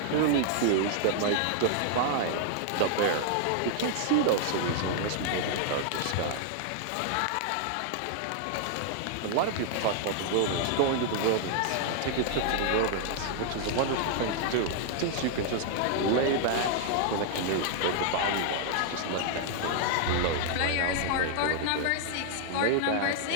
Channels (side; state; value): both; different; correlation 0.00